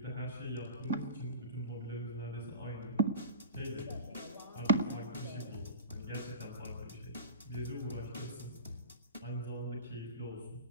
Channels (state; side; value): inverted; both; correlation -0.31